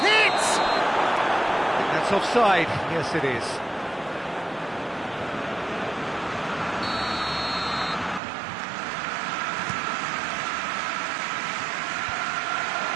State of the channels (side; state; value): left; drops out; at 8.2 s